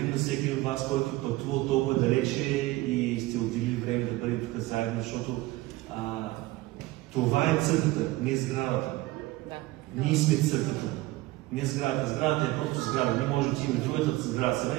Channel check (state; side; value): quieter; left; 18.9 dB